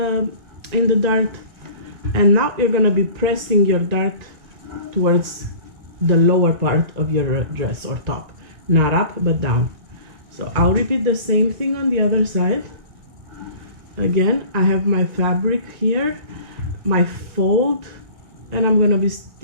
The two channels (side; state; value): left; late; 1.9 ms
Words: dart, and now you're gonna be pressing your dart towards the lower part of your dress or top, not up but down. So I'll repeat the same thing on the other side. Again, I have my fabric here, my fold, and I'm gonna be